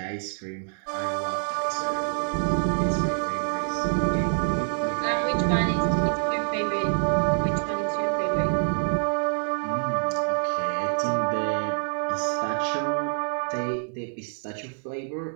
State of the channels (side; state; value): left; silent; 61 dB below the other